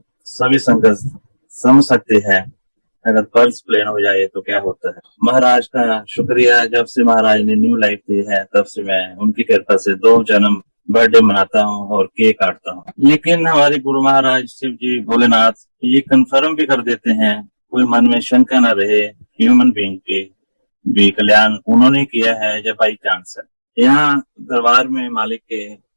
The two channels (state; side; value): inverted; both; correlation -1.00